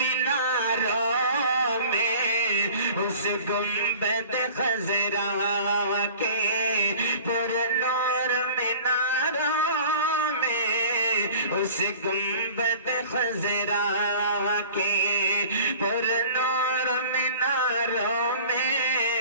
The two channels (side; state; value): both; inverted; correlation -0.44